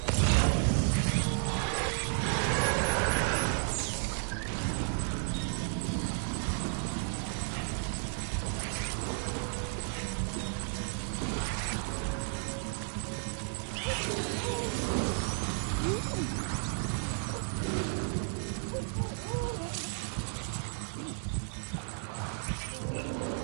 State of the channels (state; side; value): silent; left; 56 dB below the other